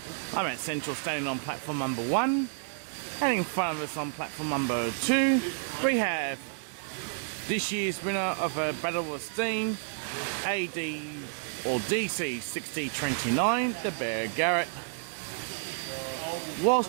I'm at Central, standing on platform number 1, and in front of us on platform number 2 we have this year's winner of a Battle of Steam AD or DC 6029, the Bear Garrett.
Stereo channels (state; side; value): silent; left; digital silence